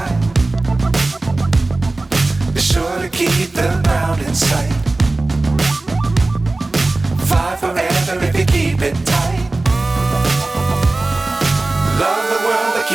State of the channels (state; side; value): quieter; left; 3.1 dB